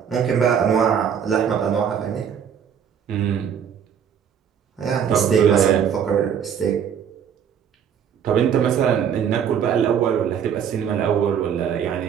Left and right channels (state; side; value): quieter; left; 8.1 dB